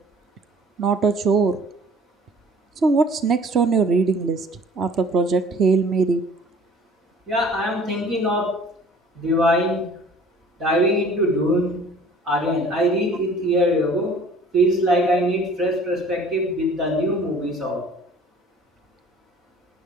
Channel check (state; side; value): normal; both; correlation 0.51